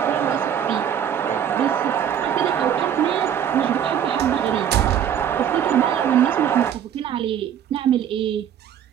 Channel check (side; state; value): left; quieter; 9.2 dB